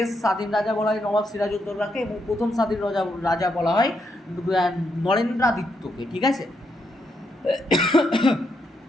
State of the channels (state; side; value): normal; both; correlation 0.79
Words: স্বাধীন রাজা বলা হয় নবাব সিরাজউদ্দৌলাকে এবং প্রথম স্বাধীন রাজা বলা হয় নরেন্দ্রাদিত্যকে, ঠিক আছে।